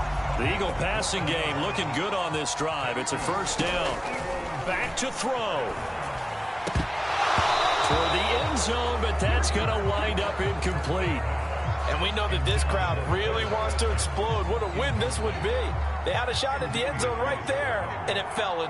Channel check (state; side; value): identical; both; correlation 1.00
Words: The Eagle passing game looking good on this drive. It's a 1st down. Back to throw. Toward the end zone, but that's going to wind up incomplete. And we know that this crowd really wants to explode. What a win this would be. They had a shot at the end zone right there, and it fell